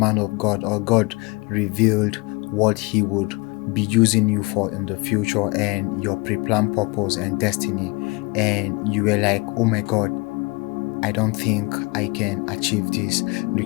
of God, or God revealed what he would be using you for in the future and your pre-planned purpose and destiny, and you were like, oh my God, I don't think I can achieve this,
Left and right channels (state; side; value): quieter; right; 26.9 dB